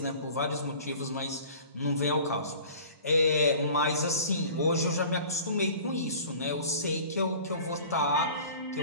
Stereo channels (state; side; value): inverted; both; correlation -0.44